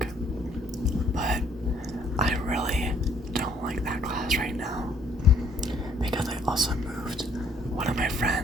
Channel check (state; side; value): normal; both; correlation 0.64